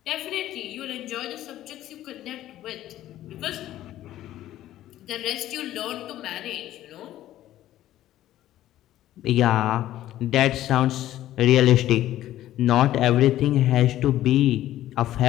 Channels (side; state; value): right; quieter; 13.5 dB